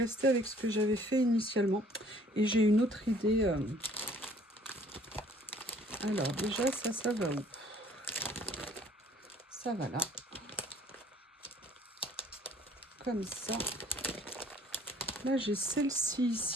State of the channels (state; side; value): normal; both; correlation 0.56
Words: avec ce que j'avais fait initialement. Et j'ai une autre idée. Alors, déjà, ça va où? Ça va là. Comme ça. Là, j'ai celle-ci